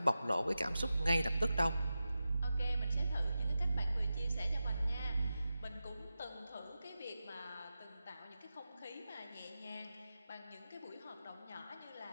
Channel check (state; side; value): inverted; both; correlation -0.92